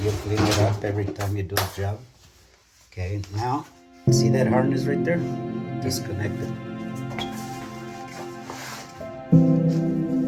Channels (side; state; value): both; identical; correlation 1.00